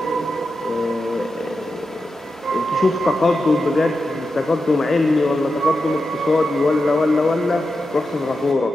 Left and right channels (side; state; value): both; normal; correlation 0.89